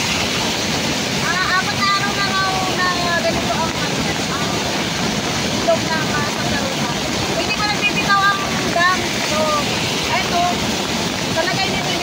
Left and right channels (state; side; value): identical; both; correlation 1.00